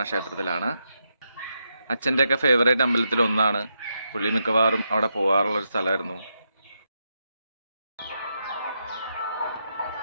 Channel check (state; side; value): inverted; both; correlation -0.83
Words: ക്ഷേത്രത്തിലാണ്. അച്ഛൻ്റെയൊക്കെ ഫേവറേറ്റ് അമ്പലത്തിൽ ഒന്നാണ്. പുള്ളി മിക്കവാറും അവിടെ പോകാറുള്ളൊരു സ്ഥലമായിരുന്നു.